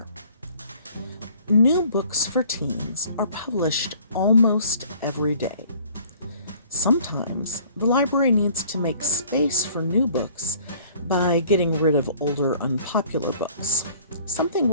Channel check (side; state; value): both; inverted; correlation -0.55